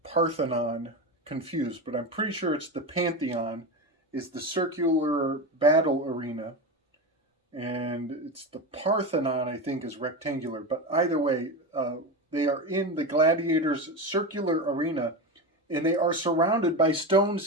Parthenon confused, but I'm pretty sure it's the Pantheon is the circular battle arena, and it's the Parthenon, I think, is rectangular. But either way, they are in the gladiators' circular arena, and they are surrounded by stone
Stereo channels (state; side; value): normal; both; correlation 0.20